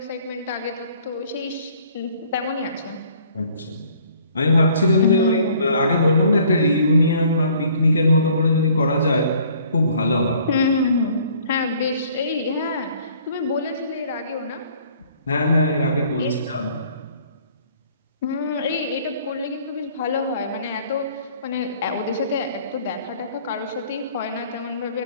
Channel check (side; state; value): both; inverted; correlation -0.57